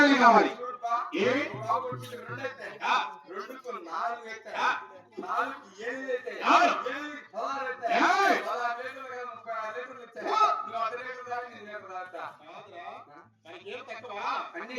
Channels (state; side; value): identical; both; correlation 1.00